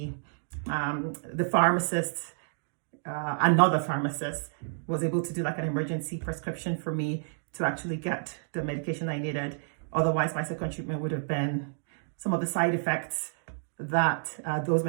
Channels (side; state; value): left; silent; digital silence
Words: The pharmacist, another pharmacist, was able to do like an emergency prescription for me to actually get the medication I needed. Otherwise, my second treatment would have been some of the side effects that those